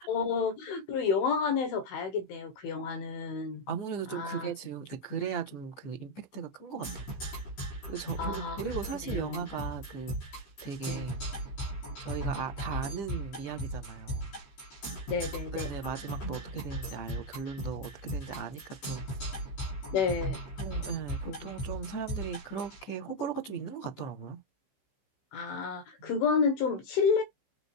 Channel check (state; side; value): late; right; 15 ms